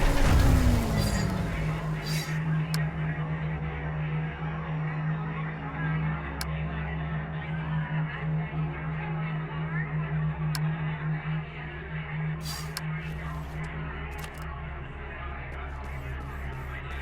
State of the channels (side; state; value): both; identical; correlation 1.00